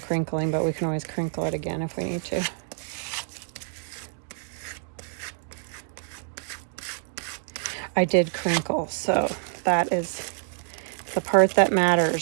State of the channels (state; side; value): silent; left; digital silence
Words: but we can always crinkle it again if we need to. I did crinkle, so that is the part that